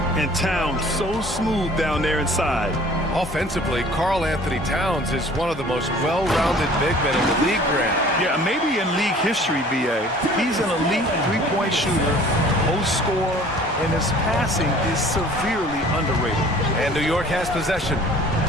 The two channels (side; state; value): both; normal; correlation 0.50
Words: And Towns so smooth down there inside. Offensively, Karl Anthony Towns is one of the most well-rounded big men in the league, Grant. Yeah, maybe in league history, B.A. He's an elite three-point shooter, post scorer, and his passing is severely underrated. And New York has possession.